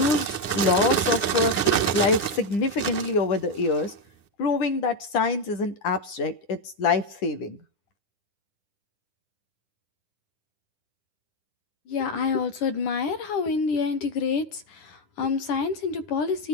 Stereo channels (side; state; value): right; late; 10 ms